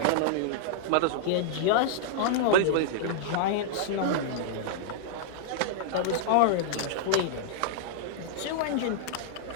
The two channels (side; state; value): both; different; correlation -0.02